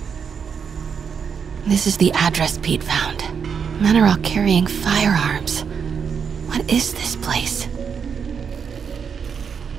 This is the address Pete found. Men are all carrying firearms. What is this place?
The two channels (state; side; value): quieter; left; 6.7 dB